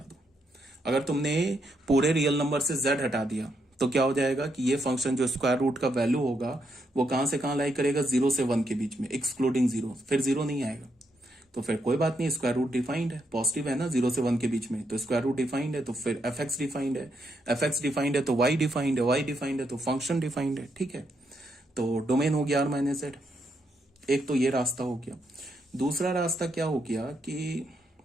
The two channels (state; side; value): normal; both; correlation 0.79